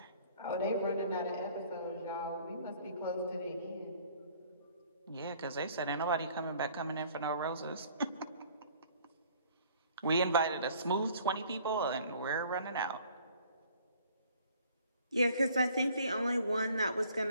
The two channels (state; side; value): inverted; both; correlation -0.56